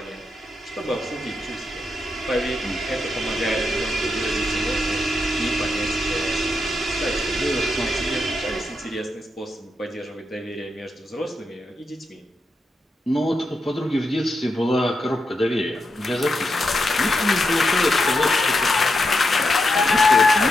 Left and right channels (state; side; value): normal; both; correlation 0.85